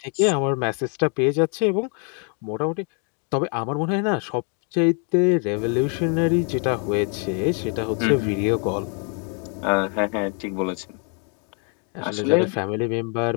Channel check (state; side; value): quieter; right; 39.9 dB